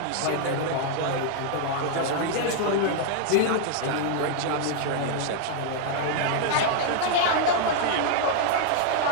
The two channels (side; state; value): both; different; correlation -0.01